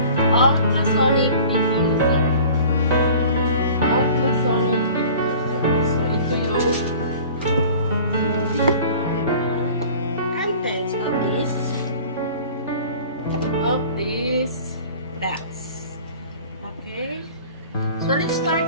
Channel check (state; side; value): inverted; both; correlation -0.44